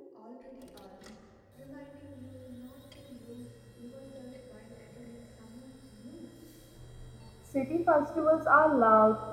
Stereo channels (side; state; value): both; identical; correlation 1.00